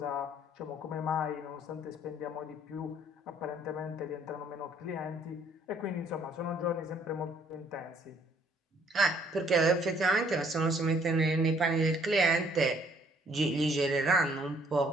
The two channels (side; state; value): both; normal; correlation 0.62